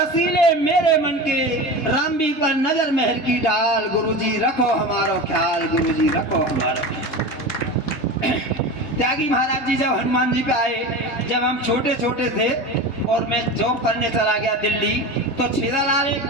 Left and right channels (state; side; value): late; right; 3.3 ms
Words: मेरे मन के, रामबी पर नजर मेहर की डाल, गुरुजी रखो हमारो ख्याल, गुरुजी रखो हमारो ख्याल। त्यागी महाराज जी जब हनुमान जी पे आए, जब हम छोटे छोटे थे और मैं जॉब करने चला गया दिल्ली, तो छेदालाल एक